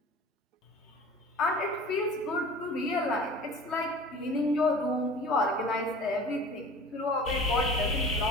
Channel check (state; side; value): normal; both; correlation 0.41